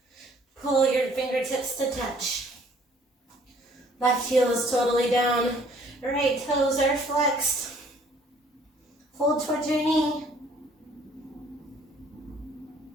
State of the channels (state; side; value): normal; both; correlation 0.59